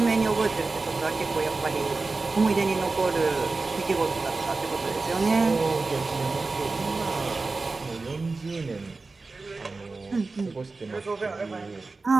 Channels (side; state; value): left; quieter; 3.7 dB